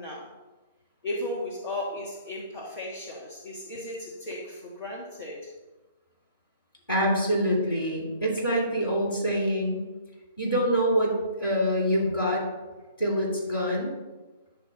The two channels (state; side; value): inverted; both; correlation -0.56